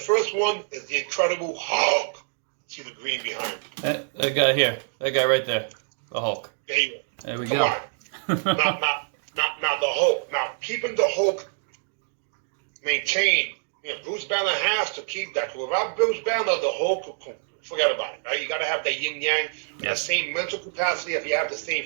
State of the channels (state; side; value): silent; left; digital silence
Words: one is the Incredible Hulk. See the green behind me. That guy here. That guy right there. The Hulk. There you go. There we Come go. on. Now the Hulk. Now, keeping the Hulk maintained, Bruce Banner has to keep that. Without Bruce Banner, the Hulk, forget about it, right? You got to have that yin-yang, the same mental capacity if you have the same